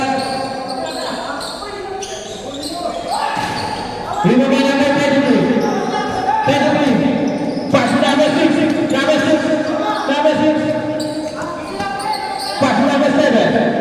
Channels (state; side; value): identical; both; correlation 1.00